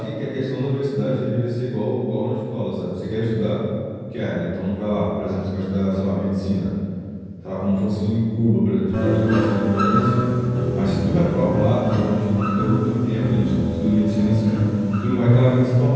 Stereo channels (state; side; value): identical; both; correlation 1.00